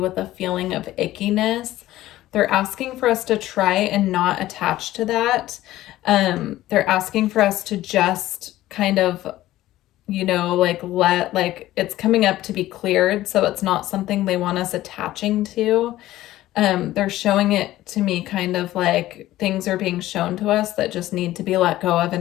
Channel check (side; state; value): right; quieter; 15.2 dB